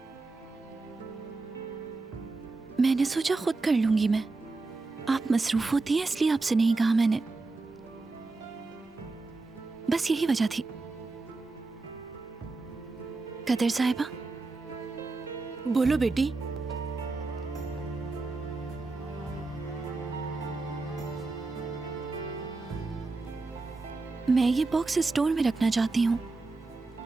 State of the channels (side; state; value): left; quieter; 3.6 dB